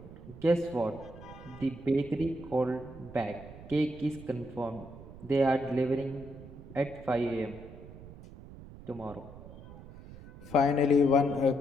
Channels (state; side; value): noise; right; rumble, 16 dB below the sound